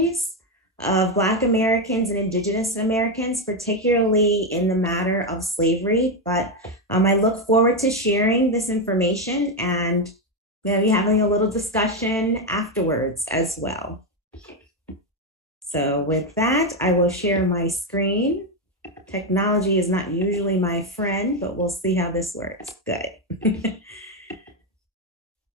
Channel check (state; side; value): normal; both; correlation 0.08